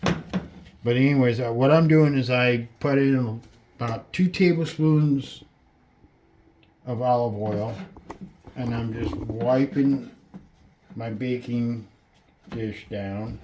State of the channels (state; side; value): identical; both; correlation 1.00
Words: But anyways, what I'm doing is I put in about 2 tablespoons of olive oil, and I'm just wiping my baking dish down